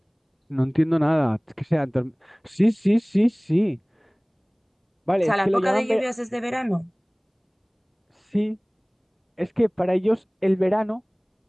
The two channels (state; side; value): identical; both; correlation 1.00